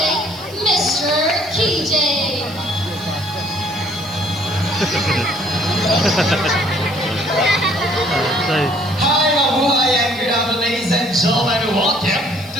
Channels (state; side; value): noise; right; hiss, 22 dB below the sound